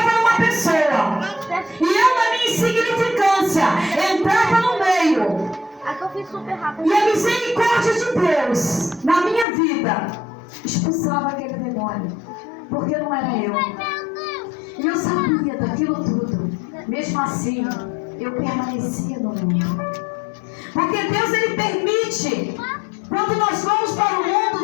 numa pessoa. E eu, na minha insignificância, entrava no meio. E a misericórdia de Deus, na minha vida, expulsava aquele demônio. Porque não era eu. E eu sabia daquilo tudo. Mesmo assim, eu permanecia no mundo. Porque Deus, Ele permite. Quando nós vamos para o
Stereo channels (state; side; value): drops out; right; at 9.5 s